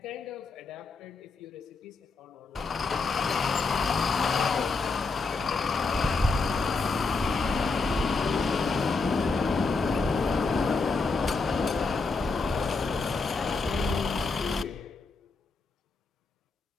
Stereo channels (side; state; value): right; quieter; 4.0 dB